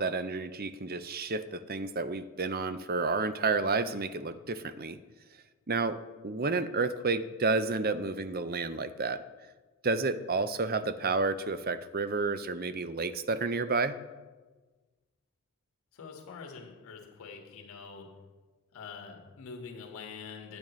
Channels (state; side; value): quieter; left; 3.2 dB